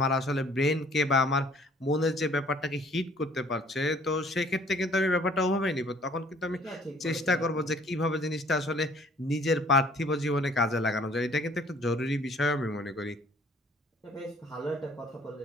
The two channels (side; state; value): both; normal; correlation 0.57